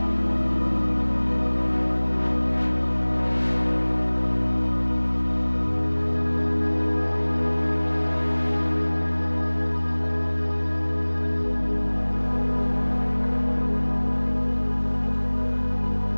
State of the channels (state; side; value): inverted; both; correlation -1.00